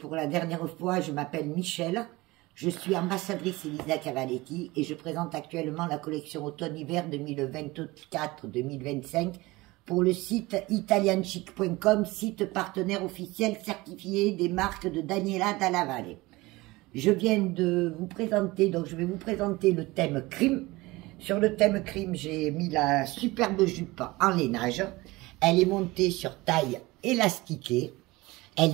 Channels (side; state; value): left; quieter; 21.1 dB